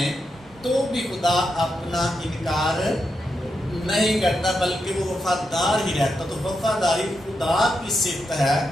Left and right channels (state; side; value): normal; both; correlation 0.85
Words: تو بھی خدا اپنا انکار نہیں کرتا، بلکہ وہ وفادار ہی رہتا. تو وفاداری خدا کی صفت ہے